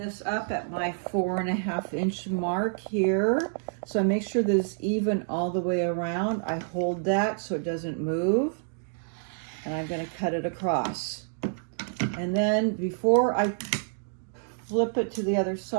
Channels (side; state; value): left; silent; digital silence